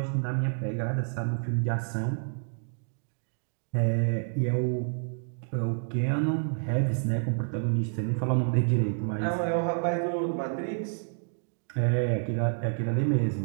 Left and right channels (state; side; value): silent; left; digital silence